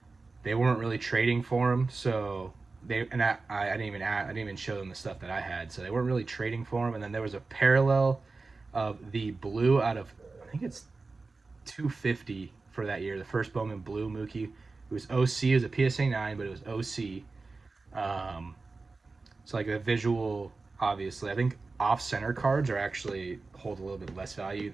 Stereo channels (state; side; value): quieter; left; 3.8 dB